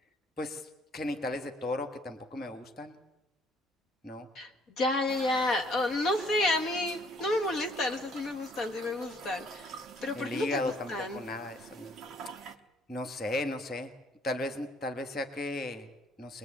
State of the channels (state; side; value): normal; both; correlation 0.63